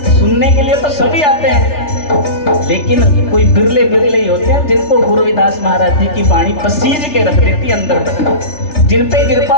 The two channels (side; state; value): right; late; 3.4 ms